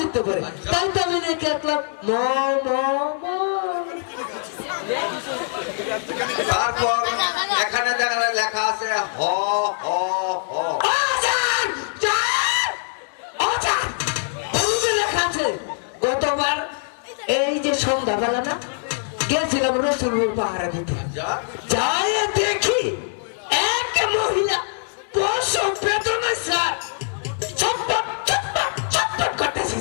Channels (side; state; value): right; silent; 59 dB below the other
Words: পারে। তাই তো আমি রেখে আসলাম ম ম ম। তারপর এখানে দেখা লেখা আছে হ হ হ। ও স্যার, স্যার, ও স্যার, ওই যে লেখা আছে গতবার এই যে সন্ধ্যাবেলা না গেছিলাম রসুলপুর পাহাড়ে দিতে, যাই দেখি এক মহিলা প্রসব বেদনা স্যার ছটপট ছটপট ছটপট করতেছে